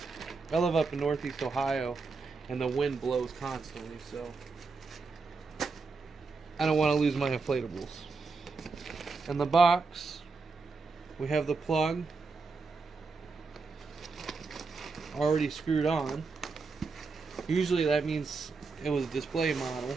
I live up in Northeast Ohio, and the wind blows constantly, so I don't want to lose my inflatables. In the box, we have the plug already screwed on. Usually that means it was a display model,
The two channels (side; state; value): left; quieter; 4.3 dB